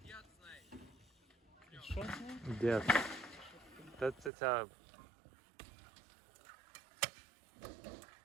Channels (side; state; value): left; drops out; at 4.3 s